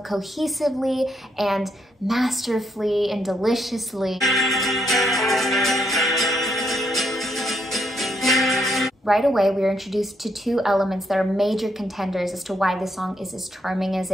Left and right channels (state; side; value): normal; both; correlation 0.75